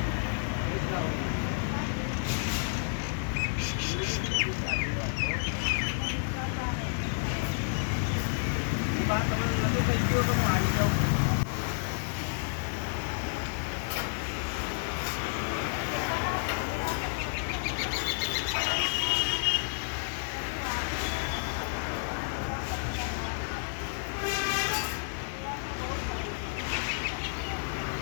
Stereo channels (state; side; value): silent; right; digital silence